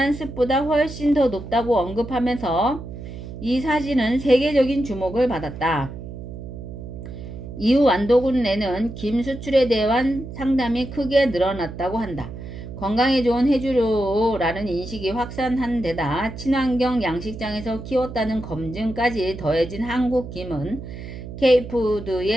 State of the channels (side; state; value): right; noise; hum, 11 dB below the sound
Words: 습보다 훨씬 더 높다고 언급하면서 이 사진은 세계적인 주목을 받았다. 이후 완도군 내는 김 수출에 대한 상담이 크게 늘어났다고 한다. 건강에 좋은 해조류라는 인식이 확산한 데다 친환경 양식장에서 키웠다는 검증까지 더해진 한국 김은